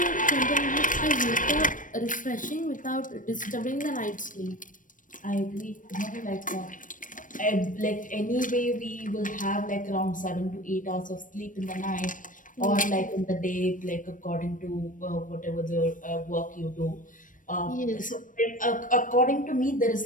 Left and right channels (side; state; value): right; late; 0.38 ms